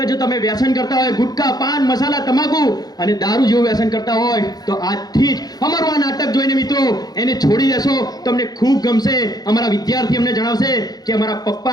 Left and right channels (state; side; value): late; right; 0.19 ms